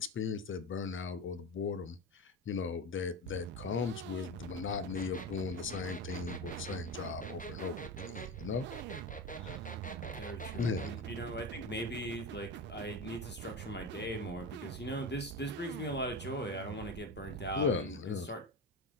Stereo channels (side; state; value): both; normal; correlation 0.23